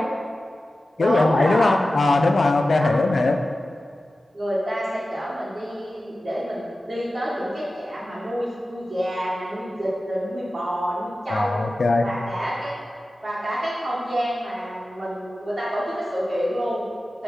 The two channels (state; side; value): normal; both; correlation 0.94